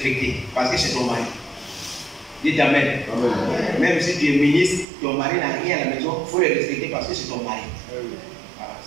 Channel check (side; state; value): left; drops out; at 4.9 s